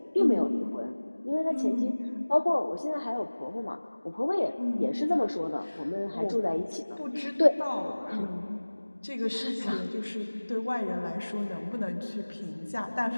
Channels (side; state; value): both; inverted; correlation -1.00